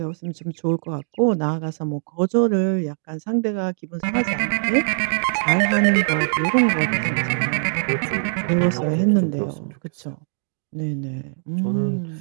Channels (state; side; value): silent; left; digital silence